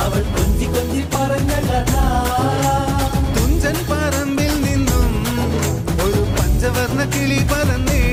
അവൾ കൊഞ്ചി കൊഞ്ചി പറഞ്ഞ കഥ തുഞ്ചൻ പറമ്പിൽ നിന്നും ഒരു പഞ്ചവർണ്ണ കിളി പറന്നേ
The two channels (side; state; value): both; identical; correlation 1.00